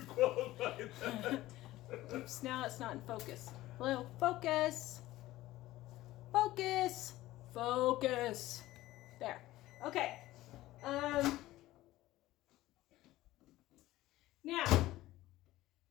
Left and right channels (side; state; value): right; quieter; 16.5 dB